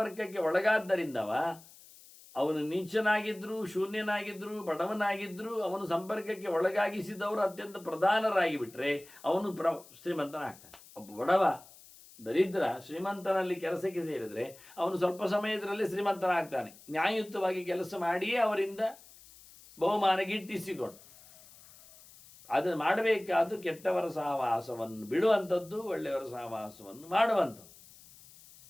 ಒಳಗಾದ್ದರಿಂದವ, ಅವನು ನೀಚನಾಗಿದ್ದರೂ ಶೂನ್ಯನಾಗಿದ್ದರೂ ಬಡವನಾಗಿದ್ದರೂ ಅವನು ಸಂಪರ್ಕಕ್ಕೆ ಒಳಗಾಗಿಸಿದವರು ಅತ್ಯಂತ ಪ್ರಧಾನರಾಗಿ ಬಿಟ್ಟರೆ ಅವನು ಶ್ರೀಮಂತನಾಗ್ತಾನೆ. ಒಬ್ಬ ಬಡವ ದರಿದ್ರ ಶ್ರೀಮಂತನಲ್ಲಿ ಕೆಲಸಕ್ಕೆ ಸೇರಿದರೆ ಅವನು ಸ್ವಲ್ಪ ಸಮಯದಲ್ಲೇ ಶ್ರೀಮಂತನಾಗ್ತಾನೆ. ನ್ಯಾಯಯುತವಾಗಿ ಕೆಲಸ ಮಾಡಿಯೇ ಅವರಿಂದ ಬಹುಮಾನ ಗಿಟ್ಟಿಸಿಕೊಂಡು. ಅದನ್ನು ಮಾಡಬೇಕಾದ್ದು ಕೆಟ್ಟವರ ಸಹವಾಸವನ್ನು ಬಿಡುವಂಥದ್ದು, ಒಳ್ಳೆಯವರ ಸಹವಾಸವನ್ನು ಮಾಡುವಂಥದ್ದು.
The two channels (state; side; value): noise; left; hiss, 22 dB below the sound